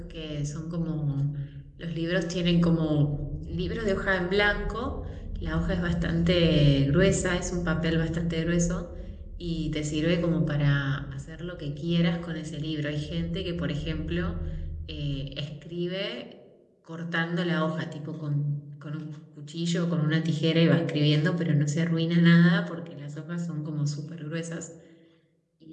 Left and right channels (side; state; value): both; identical; correlation 1.00